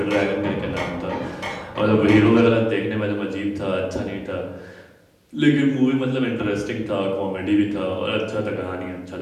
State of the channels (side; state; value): both; identical; correlation 1.00